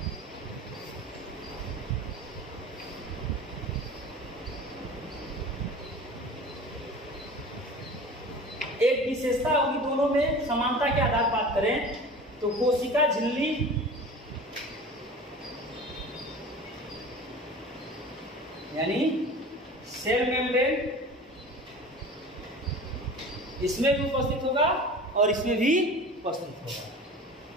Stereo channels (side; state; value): both; normal; correlation 0.38